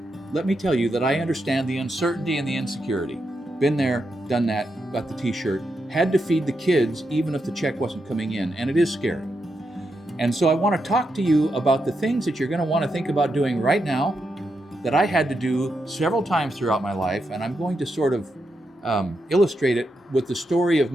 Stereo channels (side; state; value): both; normal; correlation 0.84